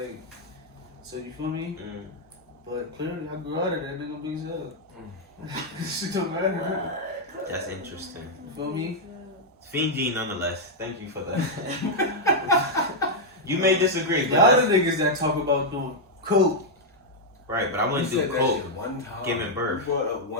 So you feel me? But clearly I grew out of that nigga big hell. Shit don't matter. That's interesting. You feel me? Fiend G nonetheless. Thank you for that. You may disagree, The but other niggas that talk about doing coke. right, but I You wouldn't do said that coke. shit one time. Giving birth. You brought up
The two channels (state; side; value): normal; both; correlation -0.03